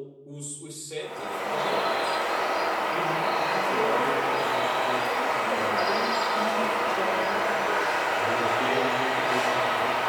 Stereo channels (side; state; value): both; identical; correlation 1.00